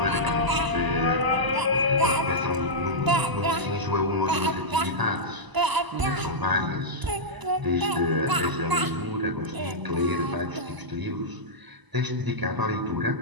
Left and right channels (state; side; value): late; left; 1.0 ms